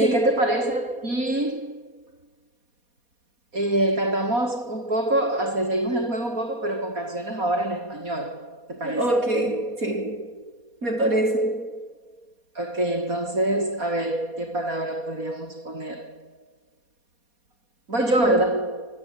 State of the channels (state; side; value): late; left; 4.2 ms